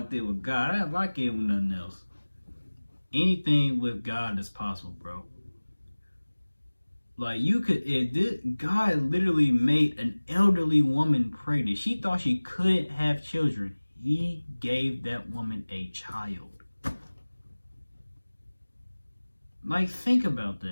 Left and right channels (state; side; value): inverted; both; correlation -1.00